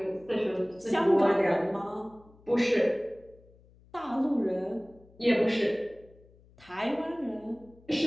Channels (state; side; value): noise; left; hum, 27 dB below the sound